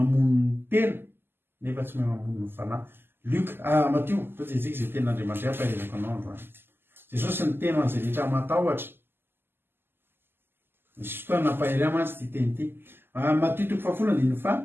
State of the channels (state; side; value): late; left; 0.10 ms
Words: ny tena nefa tsy mahay mamono ny fanahy. Matio toa jejika izay tenin'Andriamanitra ampairezako anao androany. Jesosy ny tena an'izay rehetra matahotra. Misy fotoana nampahery mantsy ty teny ity. Matio